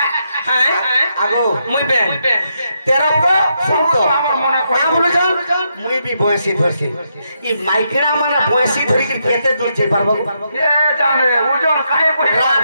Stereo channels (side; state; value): both; inverted; correlation -0.80